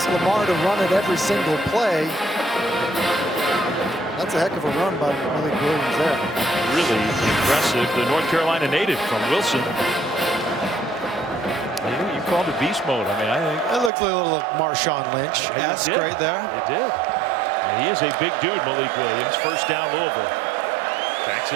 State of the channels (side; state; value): left; drops out; at 13.9 s